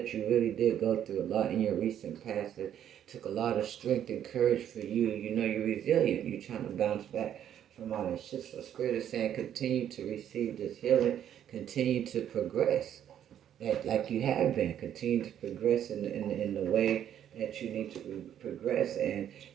you really did go through a lot in your recent past. It took a lot of strength and courage for you. You're resilient. You're trying to bounce back from all that shit. So Spirit is saying continue to receive this healing. Continue to progress. Like you have been. Continue to progress in the way that you need to progress. And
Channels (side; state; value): left; quieter; 10.2 dB